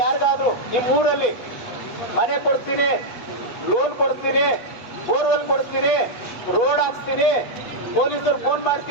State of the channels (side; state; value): right; late; 8.2 ms